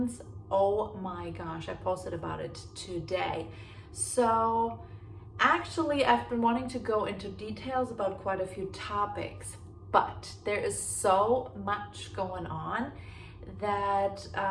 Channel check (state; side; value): identical; both; correlation 1.00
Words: oh my gosh, I posted about it today. So actually, I've been wanting to go into details about quite a few topics, but there is so much going on that